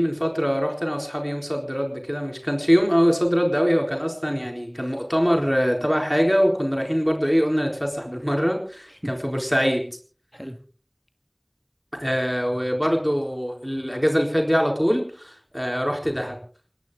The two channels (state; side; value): identical; both; correlation 1.00